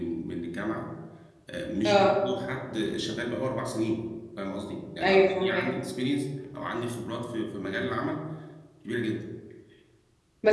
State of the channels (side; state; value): both; identical; correlation 1.00